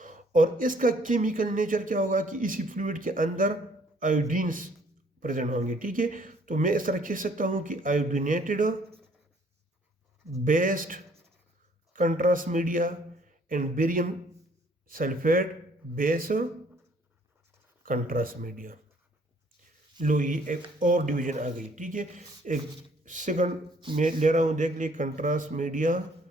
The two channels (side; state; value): both; normal; correlation 0.61